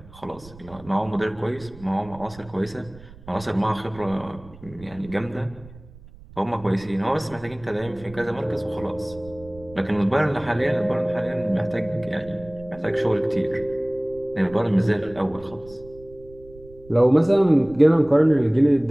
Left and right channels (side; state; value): right; noise; rumble, 21 dB below the sound